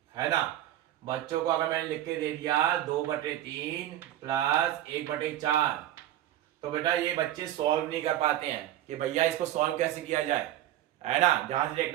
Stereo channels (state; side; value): quieter; left; 13.0 dB